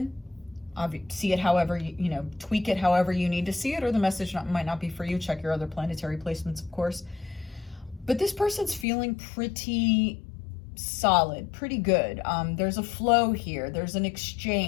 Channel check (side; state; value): right; drops out; at 8.8 s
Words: see it however you tweak it however you need to see it, or the message might not be for you. Check your other planetary placements, of course. But this person's feeling pretty solid, pretty good. There's a flow here. There's an